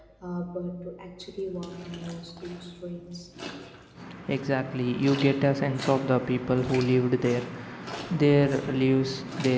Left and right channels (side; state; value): both; identical; correlation 1.00